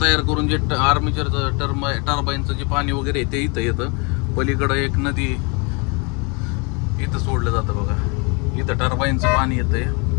तयार करून जे आर्मेचरचं टर्बाईनचं जे पाणी वगैरे ते इथं येतं. पलीकडं एक नदी इथं सोडलं जातं बघा, इथं टर्बाईनचं पाणी येतंय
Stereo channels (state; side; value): quieter; right; 31.7 dB